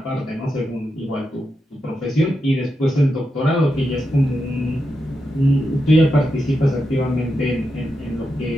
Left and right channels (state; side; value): normal; both; correlation 0.87